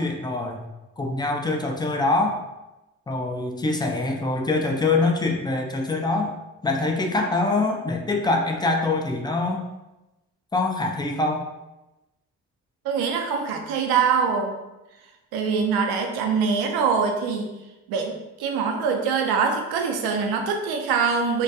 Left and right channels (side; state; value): both; normal; correlation 0.27